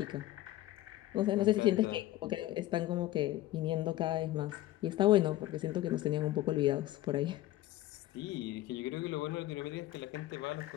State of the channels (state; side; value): quieter; right; 15.4 dB